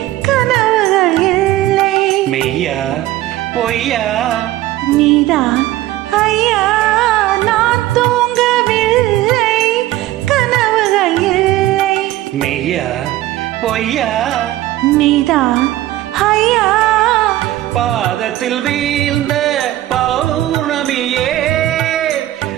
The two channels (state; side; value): quieter; left; 15.2 dB